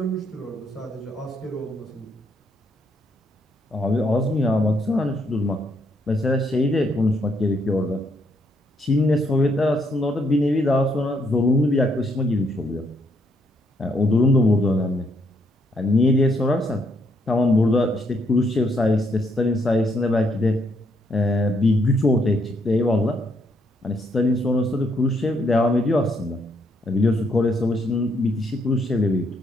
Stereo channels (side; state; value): both; normal; correlation 0.73